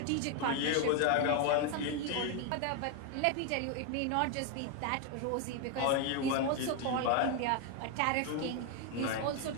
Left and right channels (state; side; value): different; both; correlation 0.01